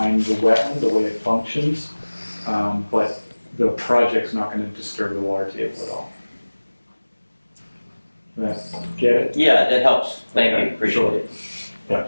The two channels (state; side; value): inverted; both; correlation -1.00